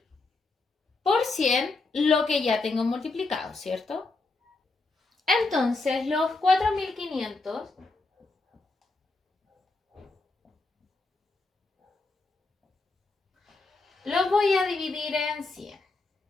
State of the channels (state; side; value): quieter; right; 3.5 dB